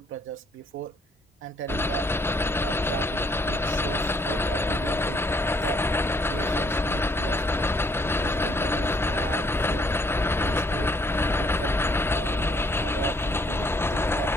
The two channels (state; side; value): normal; both; correlation 0.66